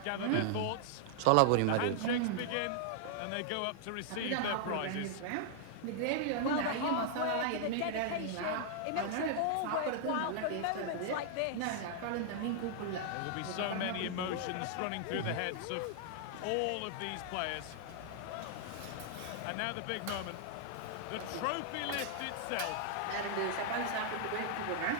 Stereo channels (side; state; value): both; different; correlation -0.01